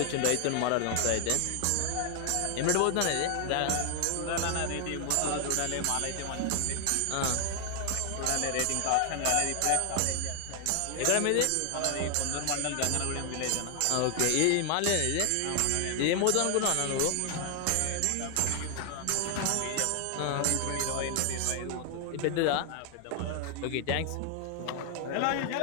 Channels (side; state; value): both; different; correlation 0.00